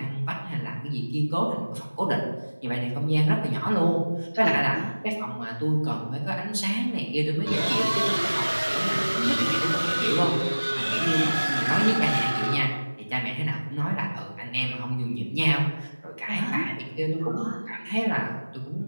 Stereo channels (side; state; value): both; inverted; correlation -1.00